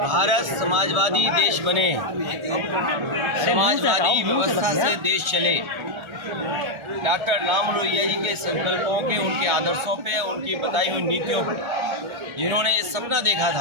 समाजवादी देश बने, समाजवादी व्यवस्था से देश चले, डॉक्टर राम लोहिया जी के संकल्पों के, उनके आदर्शों पे, उनकी बताई हुई नीतियों पे, जिन्होंने ये सपना देखा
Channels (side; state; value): left; late; 1.3 ms